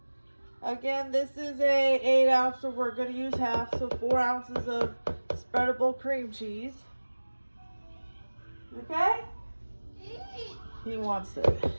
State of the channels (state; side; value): inverted; both; correlation -1.00